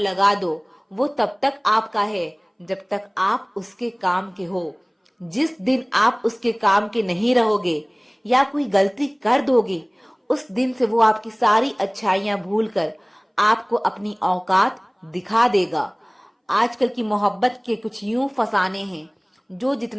दो, वो तब तक आपका है जब तक आप उसके काम के हो। जिस दिन आप उसके काम के नहीं रहोगे या कोई गलती कर दोगे, उस दिन से वो आपकी सारी अच्छाइयां भूलकर आपको अपनी औकात दिखा देगा। आजकल की मोहब्बत के कुछ यूं फसाने हैं, जो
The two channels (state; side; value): identical; both; correlation 1.00